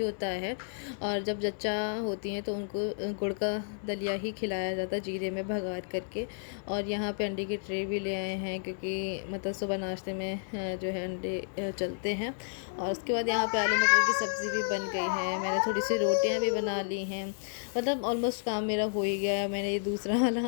है। और जब जच्चा होती हैं तो उनको गुड़ का दलिया ही खिलाया जाता है, जीरे में भगार करके। और यहाँ पे अंडे की ट्रे भी ले आए हैं, क्योंकि मतलब सुबह नाश्ते में जो है अंडे चलते हैं। और उसके बाद यहाँ पे आलू मटर की सब्ज़ी भी बन गई है। मैंने थोड़ी सी रोटियाँ भी बना ली हैं, मतलब ऑलमोस्ट काम मेरा हो ही गया है। मैंने ये दूसरा वाला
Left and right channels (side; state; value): right; silent; 57 dB below the other